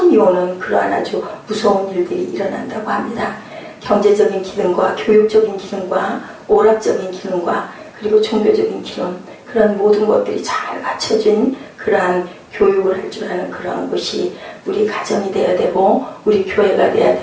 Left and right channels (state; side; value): identical; both; correlation 1.00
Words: 오는 그러한 아주 무서운 일들이 일어난다고 합니다. 경제적인 기능과 교육적인 기능과 오락적인 기능과 그리고 종교적인 기능 그런 모든 것들이 잘 갖춰진 그러한 교육을 할 줄 아는 그러한 것이 우리 가정이 돼야 되고 우리 교회가 돼야